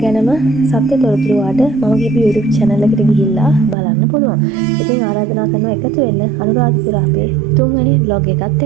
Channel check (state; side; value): drops out; left; at 3.8 s